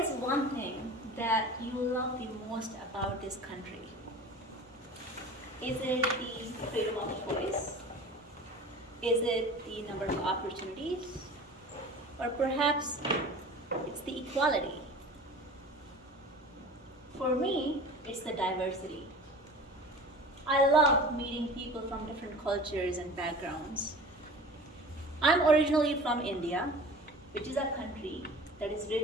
one thing that you love the most about this country? Is it the freedom of choice? Is it the number of opportunities? Or perhaps it's the equality? For me, it's the diversity. I love meeting people from different cultures and backgrounds. I'm originally from India, which is a country that is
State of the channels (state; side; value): normal; both; correlation 0.39